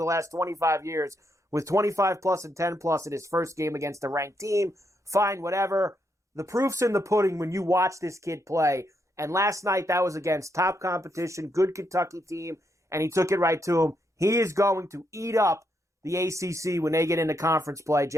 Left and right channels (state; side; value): normal; both; correlation 0.79